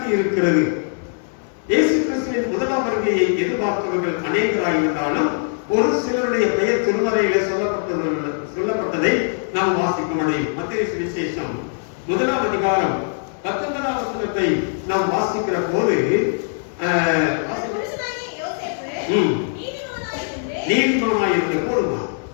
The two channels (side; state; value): right; silent; 65 dB below the other